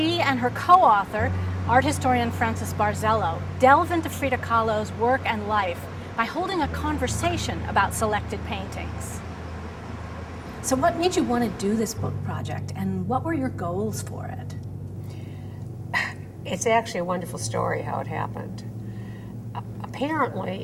and her co-author, art historian Frances Barzello, delve into Frida Kahlo's work and life by holding a conversation about selected paintings. So what made you want to do this book project, and what were your goals for it? It's actually a wonderful story how it happened.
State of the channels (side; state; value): both; identical; correlation 1.00